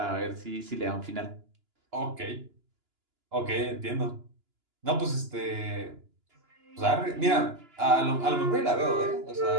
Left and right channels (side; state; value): left; late; 2.9 ms